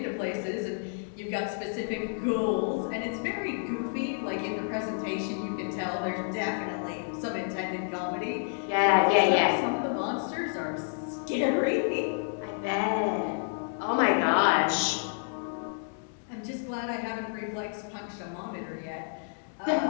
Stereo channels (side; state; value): right; silent; digital silence